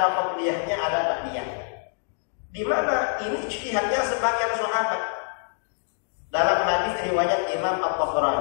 qabliyahnya, ada ba'diyahnya. Di mana ini ijtihadnya sebagian sahabat. Dalam hadis riwayat Imam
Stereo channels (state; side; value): silent; right; 57 dB below the other